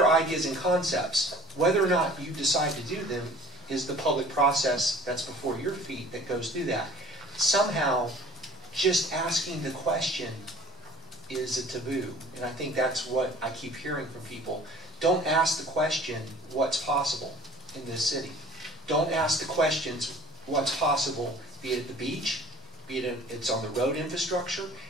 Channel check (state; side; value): normal; both; correlation 0.48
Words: ideas and concepts. Whether or not you decide to do them is the public process that's before your feet that goes through that. Somehow, just asking the question is a taboo, and I think that's what I keep hearing from people. Don't ask the question, what's possible in this city? Don't ask the questions, what's possible, be it at the beach, be it it's on the road infrastructure,